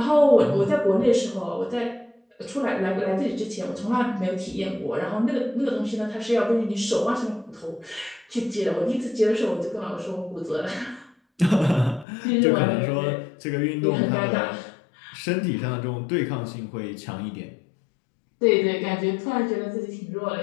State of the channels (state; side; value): drops out; right; at 12.1 s